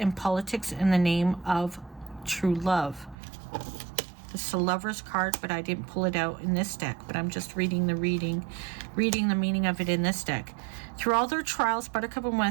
politics in the name of true love. This is a Lover's card, but I didn't pull it out in this deck, but I'm just reading the meaning of it in this deck. Through all their trials, Buttercup and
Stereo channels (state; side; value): drops out; left; at 3.2 s